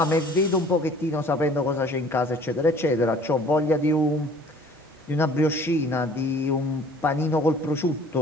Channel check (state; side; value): normal; both; correlation 0.52